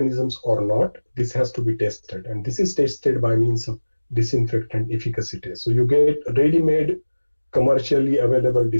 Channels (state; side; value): inverted; both; correlation -1.00